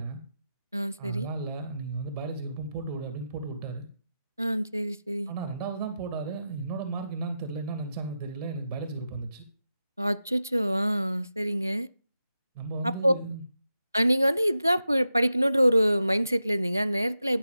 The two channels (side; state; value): both; inverted; correlation -0.90